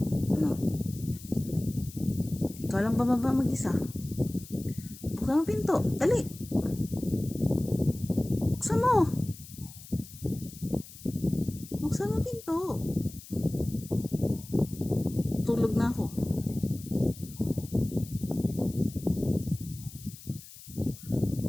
Ano? Ikaw lang bababa mag-isa. Buksan mo pinto. Dali. Buksan mo. Buksan mo pinto. Tulog na ako.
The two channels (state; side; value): noise; left; hiss, 17 dB below the sound